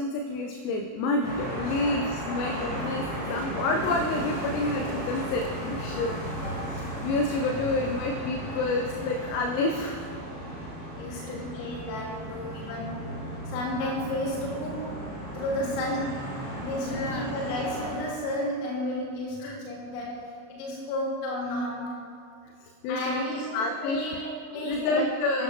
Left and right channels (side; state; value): right; late; 37 ms